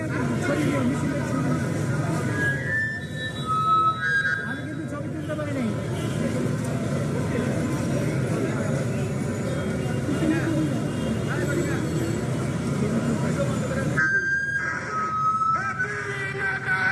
আমি কিন্তু ছবি তুলতে পারি নাই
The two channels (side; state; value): both; identical; correlation 1.00